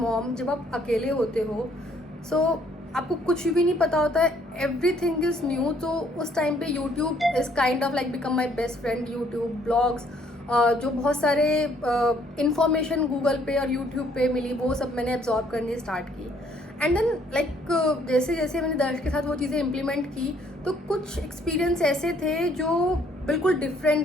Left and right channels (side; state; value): both; normal; correlation 0.64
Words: mom जब आप अकेले होते हो सो आपको कुछ भी नहीं पता होता है, एवरीथिंग इज़ न्यू। तो उस टाइम पे YouTube is kind of like become my best friend. YouTube blogs जो बहुत सारे इंफॉर्मेशन गूगल पे और यूट्यूब पे मिली वो सब मैंने एब्जॉर्ब करनी स्टार्ट की। एंड देन लाइक जैसे जैसे मैंने दर्श के साथ वो चीज़ें इम्प्लीमेंट की तो कुछ एक्सपीरियंस ऐसे थे जो बिल्कुल